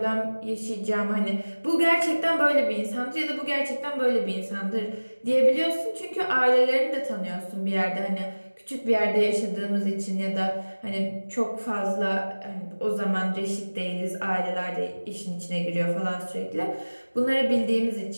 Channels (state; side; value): inverted; both; correlation -1.00